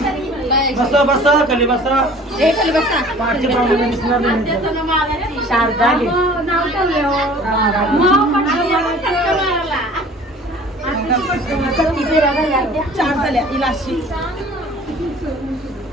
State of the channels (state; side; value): normal; both; correlation 0.47